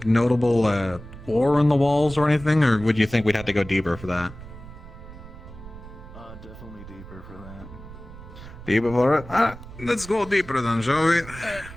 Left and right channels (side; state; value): right; noise; rumble, 16 dB below the sound